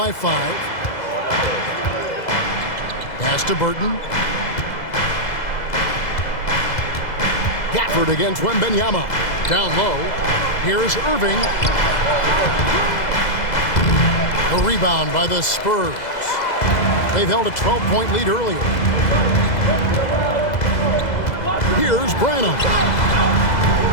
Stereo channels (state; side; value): late; right; 2.0 ms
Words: 5. Pass to Burton. Gafford against Wembanyama. Down low. Here's Irving. A rebound by the Spurs. They've held a 12-point lead earlier. Here's Branham.